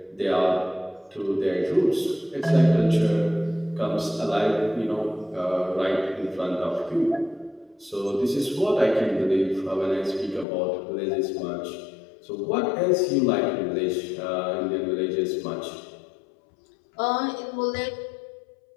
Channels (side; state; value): right; drops out; at 10.5 s